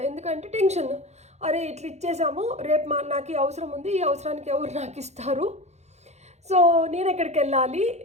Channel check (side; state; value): left; late; 0.32 ms